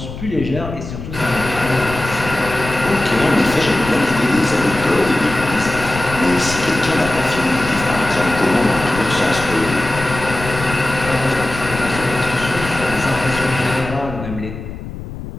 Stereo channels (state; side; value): noise; left; rumble, 10 dB below the sound